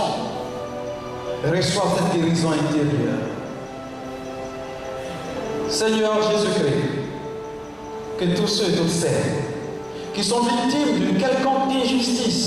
reçoivent cette guérison intérieure. Seigneur Jésus-Christ, que tous ceux et toutes celles qui sont victimes d'une quelconque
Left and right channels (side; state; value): both; identical; correlation 1.00